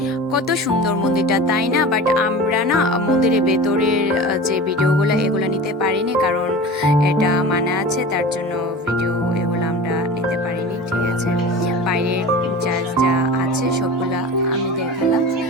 কত সুন্দর মন্দিরটা, তাই না? বাট আমরা না মন্দিরের ভেতরের যে ভিডিওগুলো এগুলো নিতে পারিনি, কারণ এটা মানা আছে, তার জন্য ভিডিও এগুলো আমরা নিতে পারিনি। ঠিক আছে, বাইরের যা যা আছে সবগুলা আমি দেখালাম।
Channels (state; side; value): normal; both; correlation 0.34